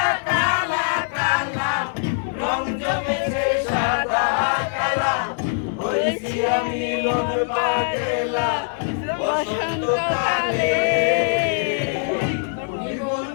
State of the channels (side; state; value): right; silent; 64 dB below the other